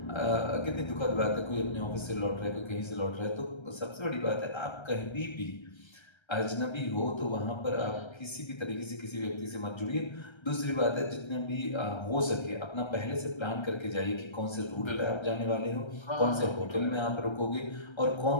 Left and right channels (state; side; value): late; right; 1.3 ms